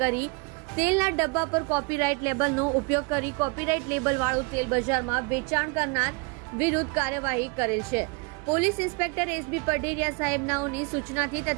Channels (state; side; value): quieter; left; 30.4 dB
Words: તેલના ડબ્બા પર કોપીરાઇટ લેબલનો ઉપયોગ કરી કોપીરાઇટ લેબલ વાળું તેલ બજારમાં વેચાણ કરનાર વિરુદ્ધ કાર્યવાહી કરેલ છે। પોલીસ ઇન્સ્પેક્ટર એસબી પઢેરિયા સાહેબનાઓની સૂચનાથી